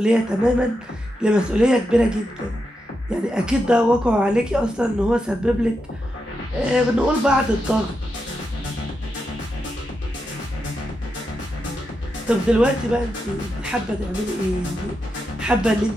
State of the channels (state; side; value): normal; both; correlation 0.86